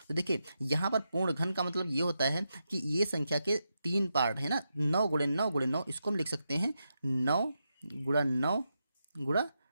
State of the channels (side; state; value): both; inverted; correlation -0.86